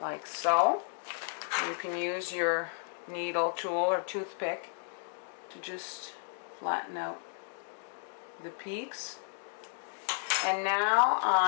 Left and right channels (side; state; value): right; silent; digital silence